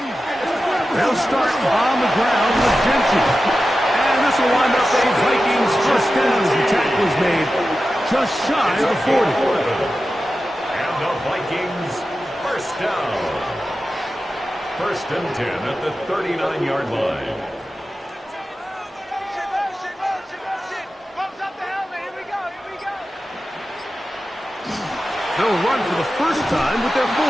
They'll start on the ground with Gentry. And this will wind up a Vikings first down as the tackle is made just shy of the 40. And the Vikings first down. 1st and 10 at the 39-yard line. They'll run for the first time with their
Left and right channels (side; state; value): both; normal; correlation 0.93